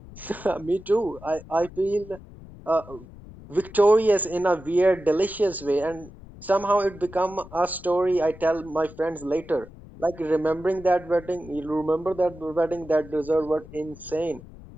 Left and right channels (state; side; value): noise; left; rumble, 18 dB below the sound